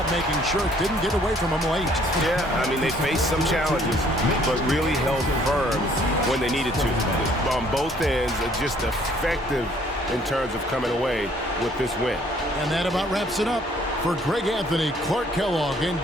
making sure it didn't get away from them late. Yeah, I mean, they faced some challenges, but really held firm when they needed to. On both ends, just effective in terms of coming away with this win. And that about wraps it up. For Greg Anthony, Clark Kellogg, and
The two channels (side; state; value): both; normal; correlation 0.61